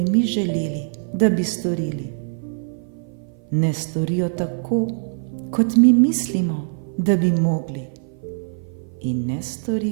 mi želeli, da bi storili. Ne storijo tako, kot mi mislimo, da bi mogli. In ne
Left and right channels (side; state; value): left; silent; 57 dB below the other